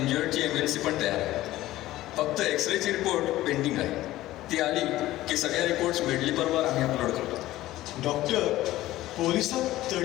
MLC पण तयार आहे. फक्त एक्सरेची रिपोर्ट पेंडिंग आहे. ती आली की सगळ्या रिपोर्ट्स मेडलीपरवर आम्ही अपलोड करतो. डॉक्टर, पोलिसात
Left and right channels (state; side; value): quieter; right; 15.9 dB